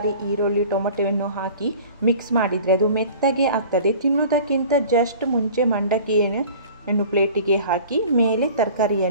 ಈರುಳ್ಳಿ, ಟೊಮೆಟೊವನ್ನು ಹಾಕಿ ಮಿಕ್ಸ್ ಮಾಡಿದರೆ ಅದು ಮೆತ್ತಗೆ ಆಗ್ತದೆ. ತಿನ್ನೋದಕ್ಕಿಂತ ಜಸ್ಟ್ ಮುಂಚೆ ಮಂಡಕ್ಕಿಯನ್ನು ಪ್ಲೇಟಿಗೆ ಹಾಕಿ ಮೇಲೆ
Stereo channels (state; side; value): inverted; both; correlation -0.44